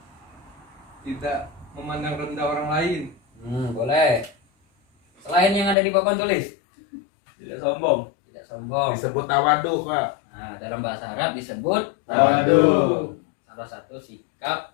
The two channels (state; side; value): drops out; right; at 5.8 s